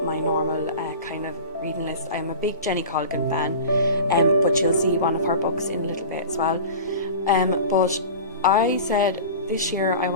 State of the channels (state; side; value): inverted; both; correlation -0.35